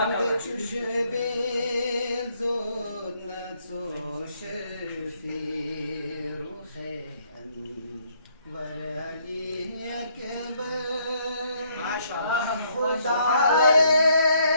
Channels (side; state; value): both; inverted; correlation -0.69